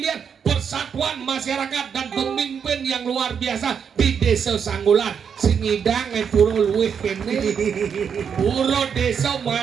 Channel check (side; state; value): left; quieter; 7.1 dB